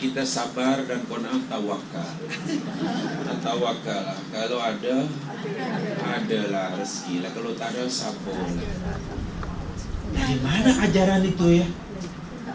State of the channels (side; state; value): both; identical; correlation 1.00